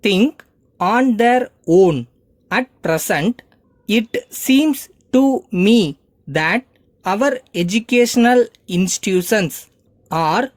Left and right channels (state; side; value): identical; both; correlation 1.00